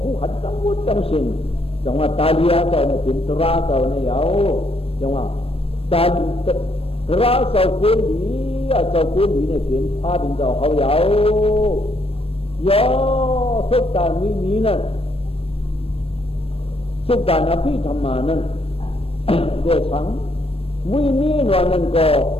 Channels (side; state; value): right; late; 0.28 ms